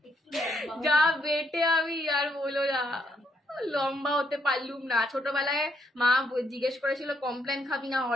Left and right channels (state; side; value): normal; both; correlation 0.74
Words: যা বেটে, আমি আর বলো না, লম্বা হতে পারলুম না। ছোটবেলায় মা জিজ্ঞেস করেছিল কমপ্লেন খাবি না